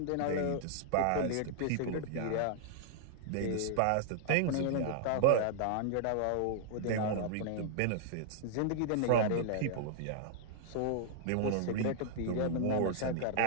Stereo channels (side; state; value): both; different; correlation -0.01